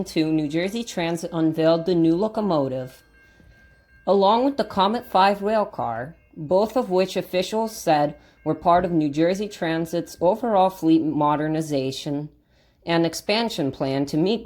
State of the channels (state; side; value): identical; both; correlation 1.00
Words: New Jersey Transit unveiled the new locomotive, along with the Comet 5 railcar, both of which officials said were part of New Jersey Transit's overall fleet modernization and expansion plan to meet